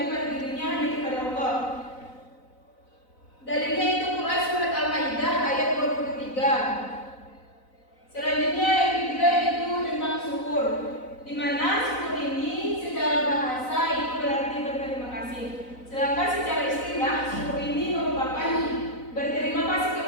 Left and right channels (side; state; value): right; late; 4.0 ms